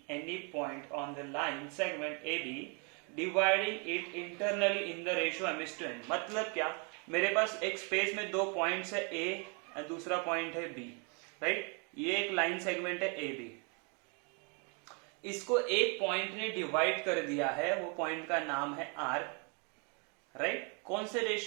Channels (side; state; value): left; quieter; 35.2 dB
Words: any point on the line segment A B dividing it internally in the ratio M is to N. मतलब क्या, मेरे पास एक space में दो points है ए और दूसरा point है बी, राइट। ये एक लाइन सेगमेंट है ए बी, इसको एक पॉइंट ने डिवाइड कर दिया है, वो पॉइंट का नाम है आर, राइट। कौन से